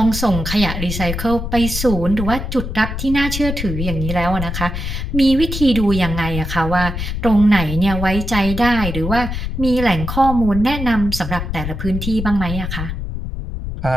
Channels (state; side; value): noise; left; rumble, 5 dB below the sound